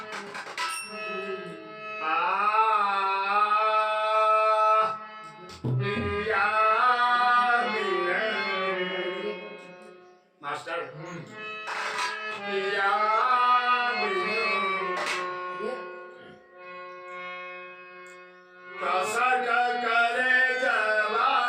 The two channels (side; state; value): both; identical; correlation 1.00